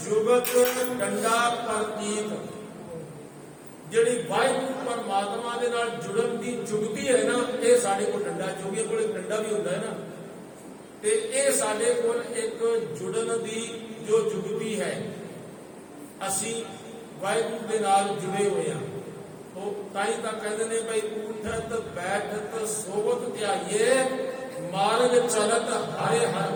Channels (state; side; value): identical; both; correlation 1.00